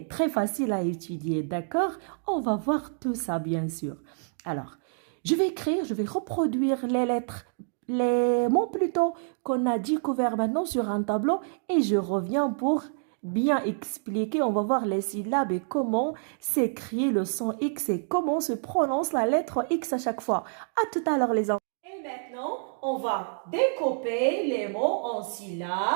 très facile à étudier, d'accord? On va voir tout ça, bien sûr. Alors, je vais reproduire les lettres, les mots plutôt qu'on a découverts maintenant sur un tableau et je reviens pour bien expliquer. On va voir les syllabes et comment s'écrit le son X et comment se prononce la lettre X à chaque fois. À tout à l'heure, les enfants. Et maintenant, on va découper les mots en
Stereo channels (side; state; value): left; silent; digital silence